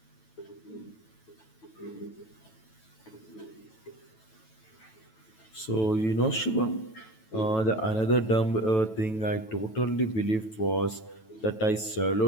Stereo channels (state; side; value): late; right; 9.2 ms